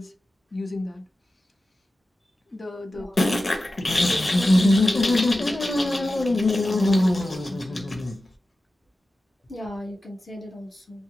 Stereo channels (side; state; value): both; normal; correlation 0.94